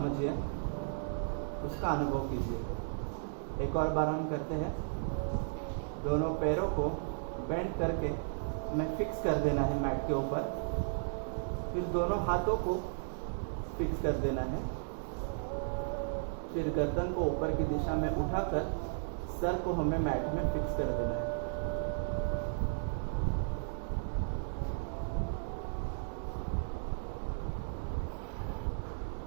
उसका अनुभव कीजिए। एक और बार हम करते हैं। दोनों पैरों को बेंड करके हमें फिक्स कर देना है मैट के ऊपर। फिर दोनों हाथों को फिक्स कर देना है। फिर गर्दन को ऊपर की दिशा में उठाकर सर को हमें मैट में फिक्स कर देना है।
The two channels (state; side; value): silent; left; digital silence